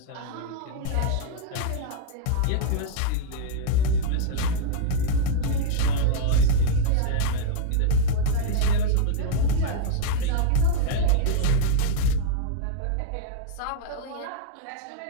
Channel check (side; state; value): both; different; correlation -0.01